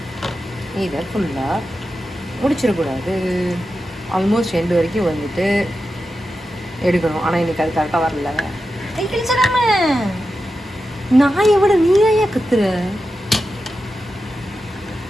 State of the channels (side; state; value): both; normal; correlation 0.90